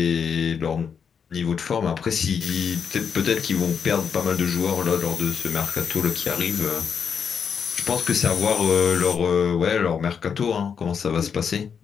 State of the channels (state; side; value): quieter; right; 6.8 dB